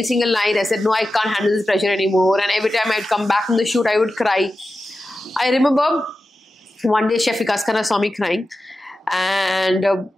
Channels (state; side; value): normal; both; correlation 0.93